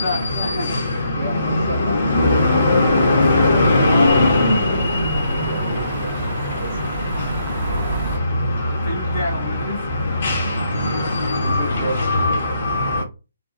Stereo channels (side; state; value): both; inverted; correlation -0.75